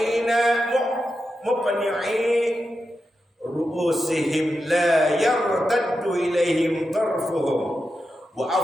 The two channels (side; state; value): both; normal; correlation 0.89